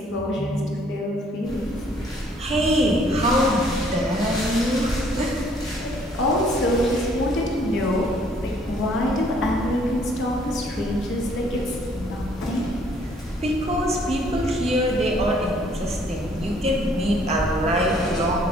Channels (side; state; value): both; normal; correlation 0.62